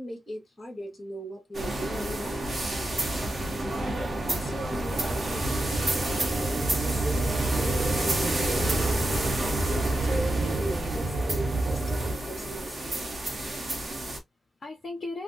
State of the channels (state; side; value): normal; both; correlation 0.89